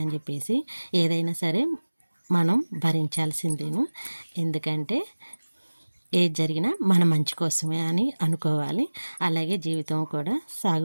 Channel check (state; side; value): inverted; both; correlation -1.00